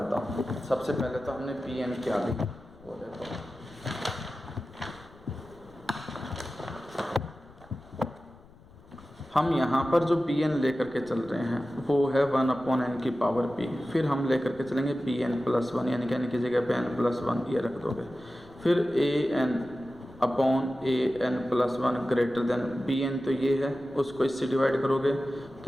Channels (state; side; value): noise; left; rumble, 24 dB below the sound